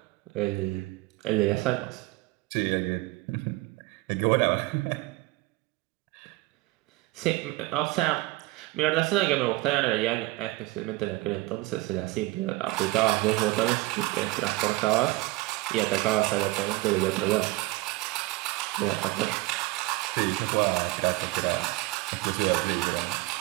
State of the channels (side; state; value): left; quieter; 19.9 dB